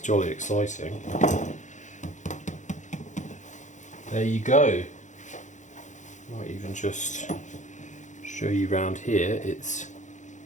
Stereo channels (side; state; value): right; late; 0.35 ms